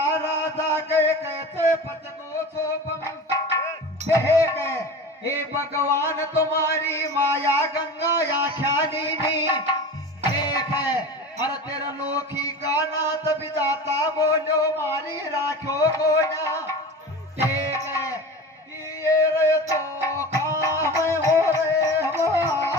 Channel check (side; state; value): both; normal; correlation 0.33